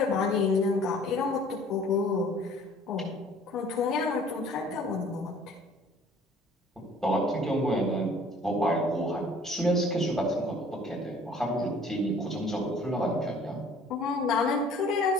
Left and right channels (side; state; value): both; normal; correlation 0.53